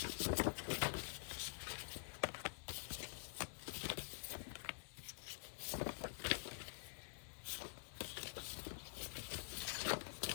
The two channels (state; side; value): silent; right; digital silence